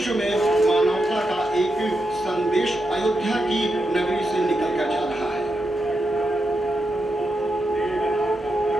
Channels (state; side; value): normal; both; correlation 0.85